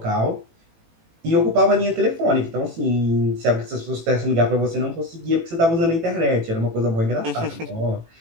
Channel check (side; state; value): left; late; 18 ms